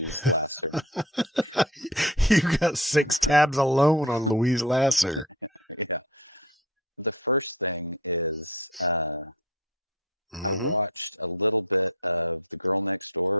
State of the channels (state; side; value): normal; both; correlation 0.35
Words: Lasser. You got 6 tabs alone on Louise Lasser. Yeah. The first thing is... I watched a little bit of The Girl Next